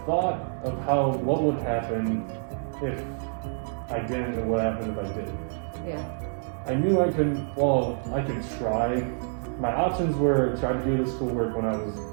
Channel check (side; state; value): left; silent; 60 dB below the other